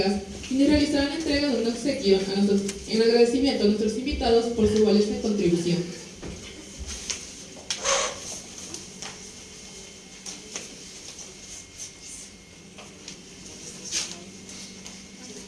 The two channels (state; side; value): identical; both; correlation 1.00